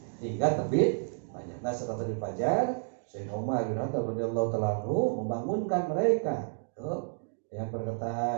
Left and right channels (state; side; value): silent; left; digital silence